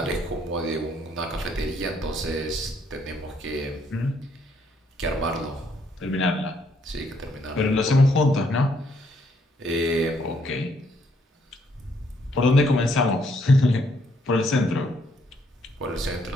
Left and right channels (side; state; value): both; normal; correlation 0.70